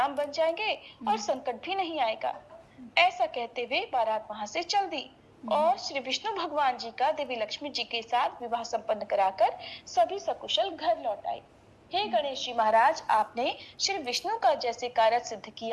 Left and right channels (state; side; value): identical; both; correlation 1.00